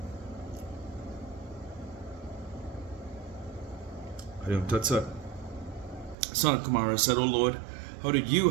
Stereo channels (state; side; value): drops out; left; at 6.2 s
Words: Sanat Kumara said, O Lord, how did you